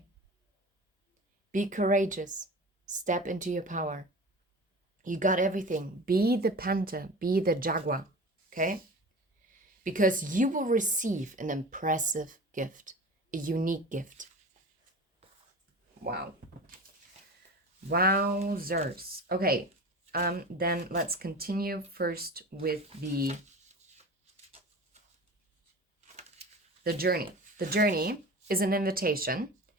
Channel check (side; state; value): both; normal; correlation 0.34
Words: Be courageous. Step into your power. You got everything. Be the panther. Be the jaguar. Okay? Because you will receive an impressive gift. A unique gift. Wow. Wowzers. Okay. Then let's continue first with the journey. The journey is an invitation